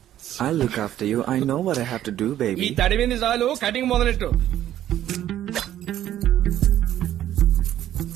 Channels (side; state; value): left; quieter; 12.1 dB